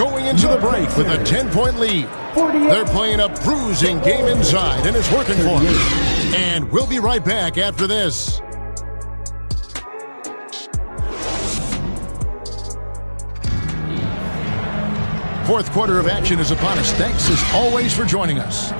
into the break with a 10-point lead. They're playing a bruising game inside, and it's working for them. And we'll be right back after this. Fourth quarter of action is upon us. Thanks, as always, for joining us.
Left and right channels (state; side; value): inverted; both; correlation -1.00